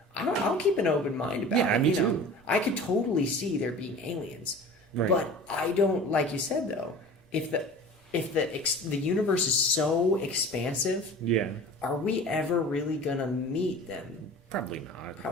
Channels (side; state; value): both; normal; correlation 0.40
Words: I'll keep an open mind about it. Yeah, me too. Know, I could totally see there being aliens, but I don't. Like you said, though, if the universe is so expansive, are we ever really gonna meet them? Probably not.